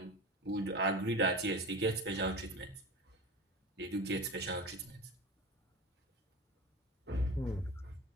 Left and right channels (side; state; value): both; normal; correlation 0.30